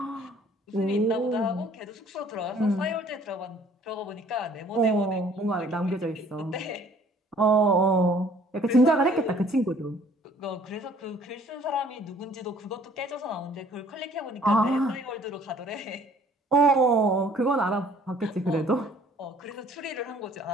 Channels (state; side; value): normal; both; correlation 0.56